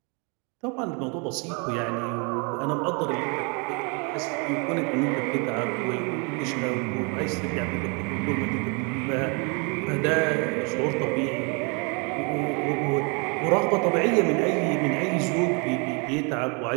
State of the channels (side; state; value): left; quieter; 33.3 dB